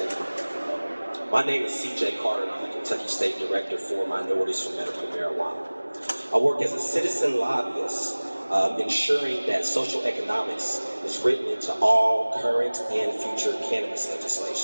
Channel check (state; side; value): inverted; both; correlation -1.00